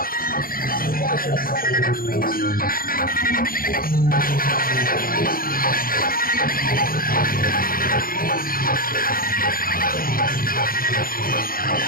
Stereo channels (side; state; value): right; late; 0.42 ms